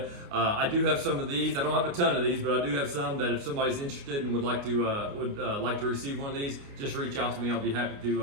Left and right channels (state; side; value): late; left; 29 ms